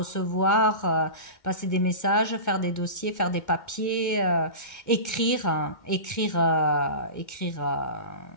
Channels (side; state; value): right; late; 2.1 ms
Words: passer des messages, faire des dossiers, faire des papiers, écrire